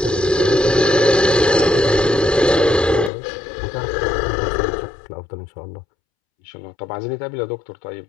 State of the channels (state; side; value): drops out; right; at 3.1 s